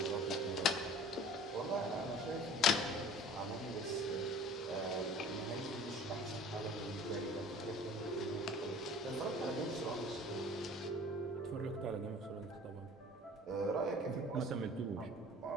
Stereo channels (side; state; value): both; normal; correlation 0.45